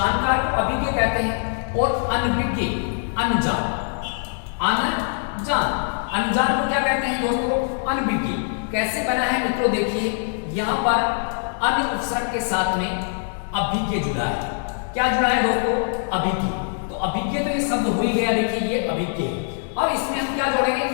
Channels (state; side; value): silent; right; digital silence